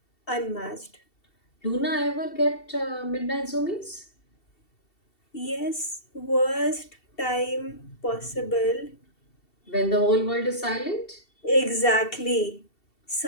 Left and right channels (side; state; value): right; late; 2.7 ms